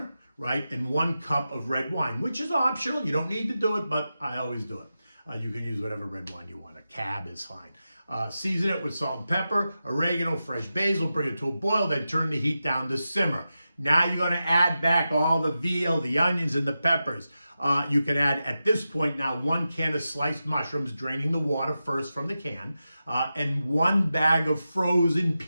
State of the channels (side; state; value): both; inverted; correlation -0.91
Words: right, and 1 cup of red wine, which is optional. You don't need to do it, but I always do it. You can use whatever red wine you want. A Cab is fine. Season it with salt and pepper, oregano, fresh basil, bring it to a boil, then turn the heat down to simmer. Now you're going to add back all the veal, the onions, and the peppers. You can add, at this point now, 1 can of sliced mushrooms, draining the water first from the can, and 1 bag of frozen